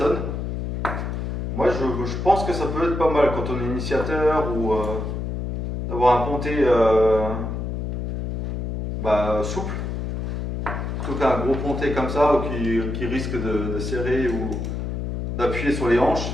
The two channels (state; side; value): noise; left; hum, 3 dB below the sound